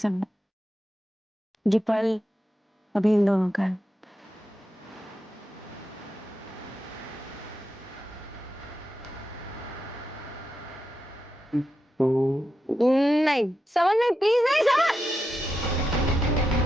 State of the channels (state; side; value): normal; both; correlation 0.87